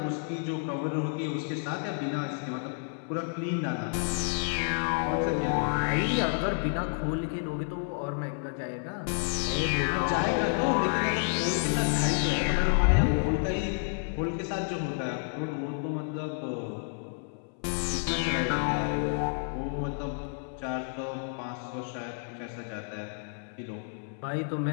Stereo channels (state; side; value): silent; right; 58 dB below the other